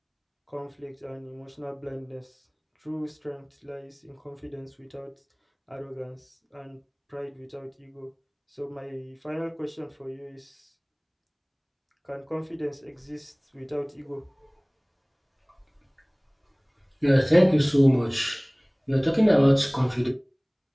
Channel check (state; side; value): identical; both; correlation 1.00